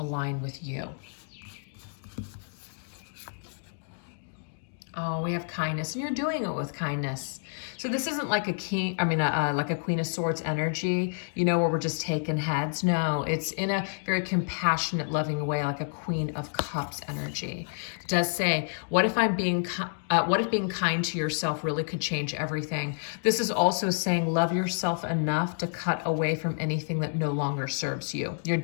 with you. Oh, we have kindness, and you're doing it with kindness. So this isn't like like a Queen of Swords energy, where we're just taking heads. No, it's in a very compassionate, loving way, like a Queen of Cups energy. It does say, what if being kind to yourself really could change everything? This is also saying, love yourself enough to cut away from anything that no longer serves you. You're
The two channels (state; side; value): silent; right; digital silence